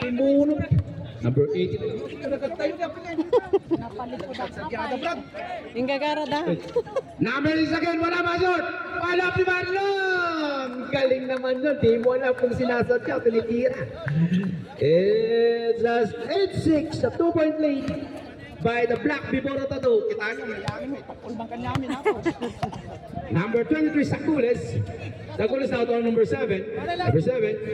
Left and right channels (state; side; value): identical; both; correlation 1.00